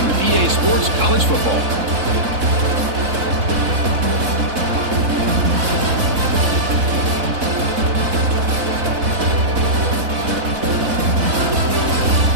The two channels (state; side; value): late; left; 3.9 ms